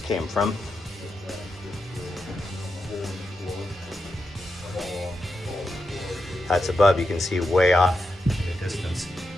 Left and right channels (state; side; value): normal; both; correlation 0.86